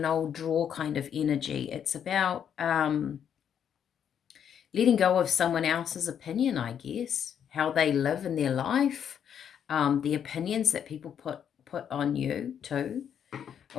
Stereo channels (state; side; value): quieter; right; 8.6 dB